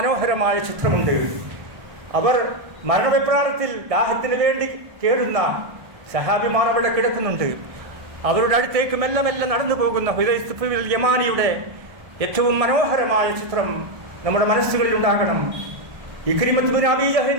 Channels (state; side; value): late; left; 1.6 ms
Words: ചിത്രമുണ്ട്. അവർ മരണവെപ്രാളത്തിൽ ദാഹത്തിന് വേണ്ടി കേടുന്ന സഹാബിമാർ അവിടെ കിടക്കുന്നുണ്ട്. അവരുടെ അടുത്തേക്ക് മെല്ലെ മെല്ലെ നടന്നു പോകുന്ന ഹുദൈഫത്തുൽ യമാനിയുടെ ഏറ്റവും മനോഹരമായ ചിത്രം നമ്മുടെ മനസ്സുകളിൽ ഉണ്ടാകണം. ഇക്രിമത്ത് ബിൻ അബീ